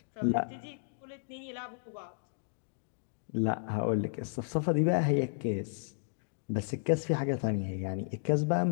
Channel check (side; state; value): right; silent; digital silence